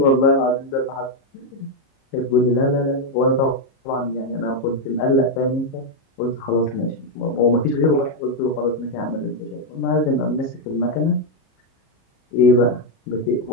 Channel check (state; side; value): late; right; 37 ms